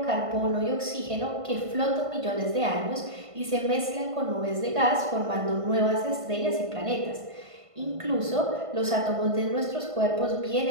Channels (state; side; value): late; left; 1.5 ms